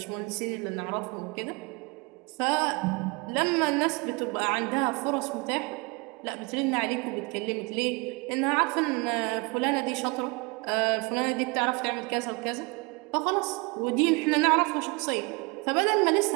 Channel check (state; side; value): quieter; left; 28.6 dB